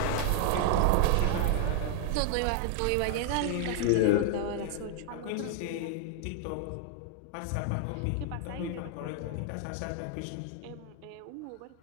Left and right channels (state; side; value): different; both; correlation 0.00